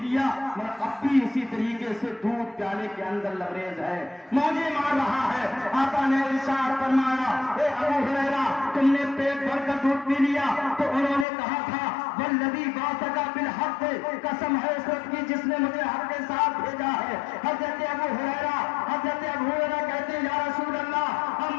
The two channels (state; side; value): drops out; right; at 11.2 s